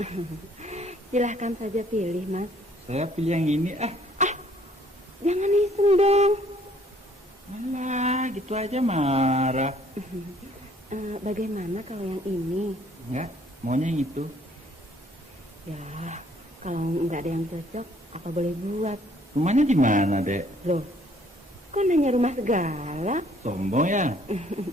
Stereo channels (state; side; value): normal; both; correlation 0.61